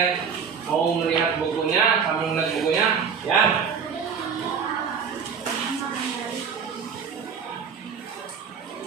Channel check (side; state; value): left; quieter; 6.6 dB